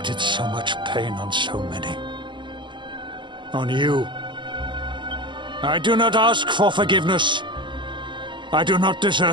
so much pain on so many. On you. I do not ask for forgiveness. I do not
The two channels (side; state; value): left; late; 0.23 ms